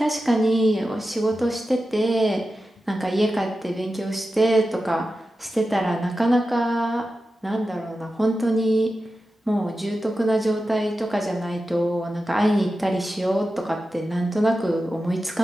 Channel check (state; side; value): normal; both; correlation 0.92